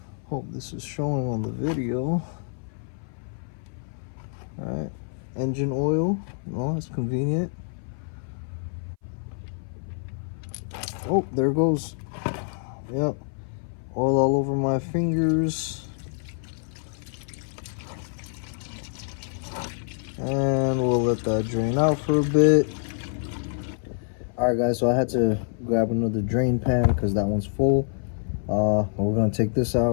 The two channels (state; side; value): silent; right; 57 dB below the other